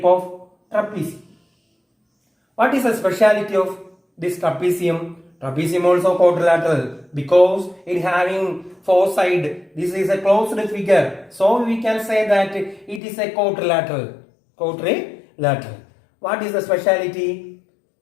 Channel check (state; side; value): drops out; right; at 13.0 s